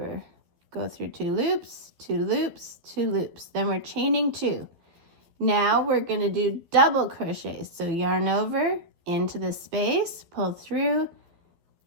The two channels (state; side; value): late; left; 12 ms